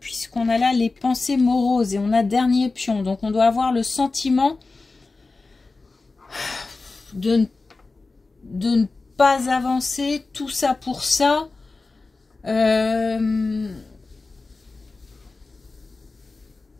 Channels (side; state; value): right; quieter; 3.7 dB